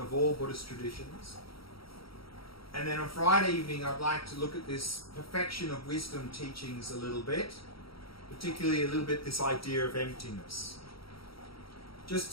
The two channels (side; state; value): right; late; 0.75 ms